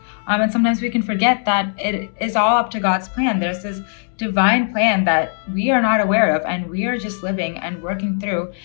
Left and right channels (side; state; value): right; silent; 66 dB below the other